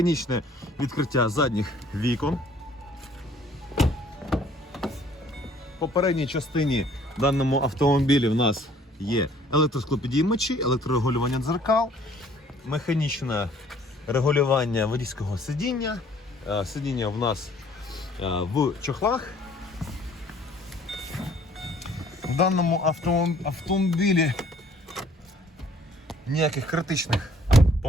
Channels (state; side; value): normal; both; correlation 0.58